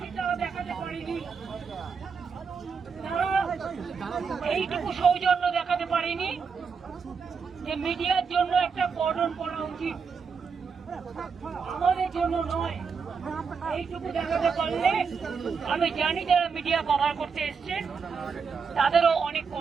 তারা দেখাতে পারেনি, তারা এইটুকু সৌজন্য দেখাতে পারেনি যে মিডিয়ার জন্য একটা কর্ডন করা উচিত, আমাদের জন্য নয়। এইটুকু দেখাতে পারলে আমি জানি যারা মিডিয়া কভার করতে এসছেন তাদেরও অনেক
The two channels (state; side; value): quieter; left; 5.7 dB